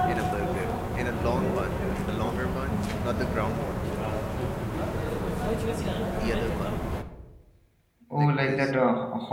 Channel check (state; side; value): identical; both; correlation 1.00